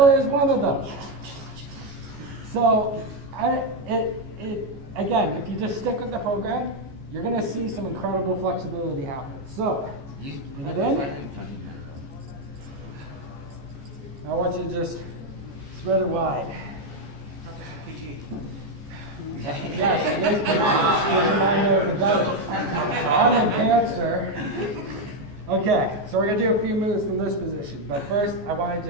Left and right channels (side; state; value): left; late; 14 ms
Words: is one of them. So, again, if you just stick with the program, you're going to see some incredible flexibility happen. So, bring it in. I want you to just spread it wide. Yes, it is I'm in pants, sir. Okay, so we're going to do a few moves from this position. But first, I want to